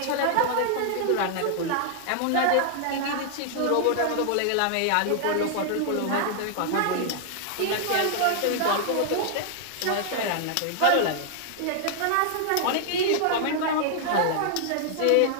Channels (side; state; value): both; different; correlation -0.01